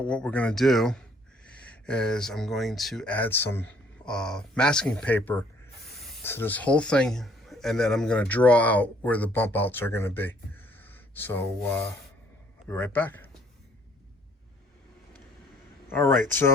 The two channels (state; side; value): normal; both; correlation 0.62